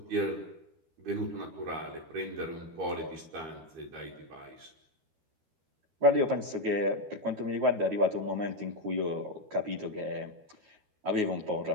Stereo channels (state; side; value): late; left; 13 ms